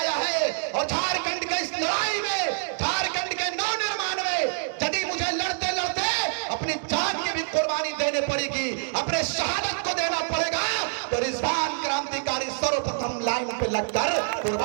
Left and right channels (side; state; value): left; silent; digital silence